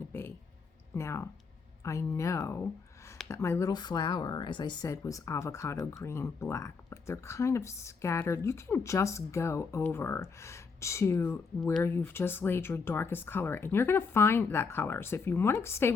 be. Now, I know that my little flower, as I said, was avocado green black, but they're kind of scattered. You can just go over to where you've just laid your darkest color, and you're going to find that color. So if you want to stay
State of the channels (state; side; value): quieter; right; 5.0 dB